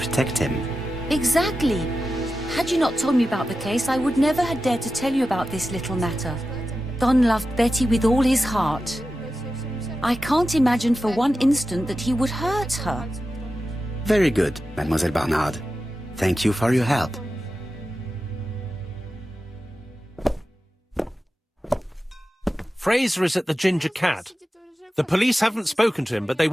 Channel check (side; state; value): both; normal; correlation 0.92